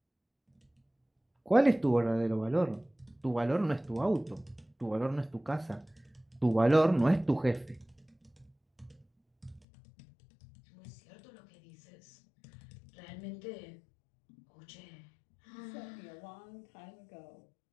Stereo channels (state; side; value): drops out; right; at 9.6 s